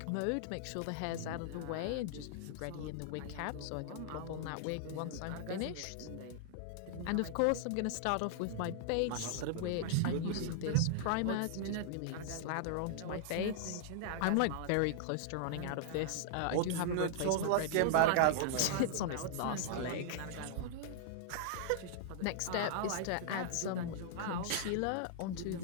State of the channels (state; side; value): different; both; correlation -0.01